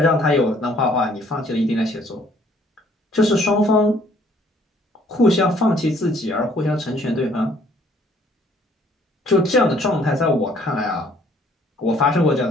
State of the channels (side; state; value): both; normal; correlation 0.61